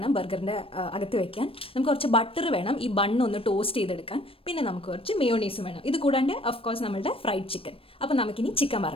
ബർഗറിൻ്റെ അകത്ത് വെക്കാൻ. നമുക്ക് കുറച്ച് ബട്ടർ വേണം ഈ ബണ്ണൊന്ന് ടോസ്റ്റ് ചെയ്തെടുക്കാൻ. പിന്നെ നമുക്ക് കുറച്ച് മയോണീസും വേണം. ഇത് കൂടാണ്ട് ഓഫ് കോഴ്സ് നമ്മളുടെ ഫ്രൈഡ് ചിക്കൻ. അപ്പോൾ നമുക്കിനി ചിക്കൻ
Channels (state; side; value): late; right; 0.27 ms